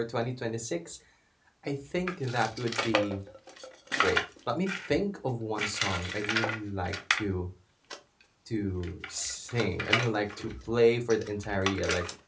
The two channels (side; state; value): both; identical; correlation 1.00